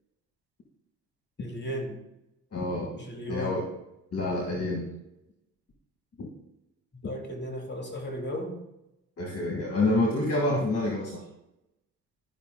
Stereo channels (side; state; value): both; normal; correlation 0.42